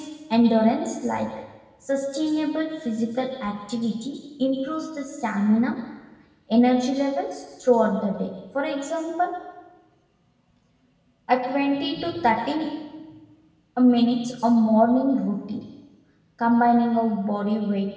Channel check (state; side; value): identical; both; correlation 1.00